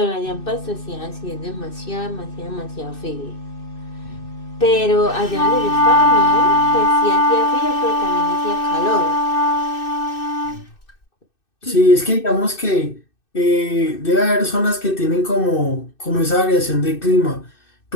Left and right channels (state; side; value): late; right; 2.6 ms